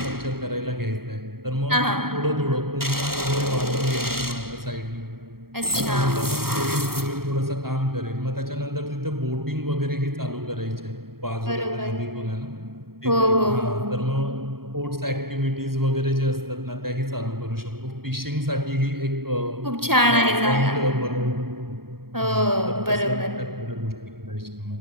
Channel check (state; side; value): late; left; 0.94 ms